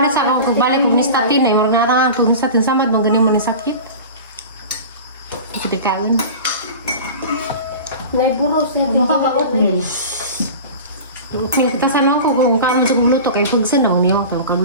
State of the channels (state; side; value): inverted; both; correlation -0.34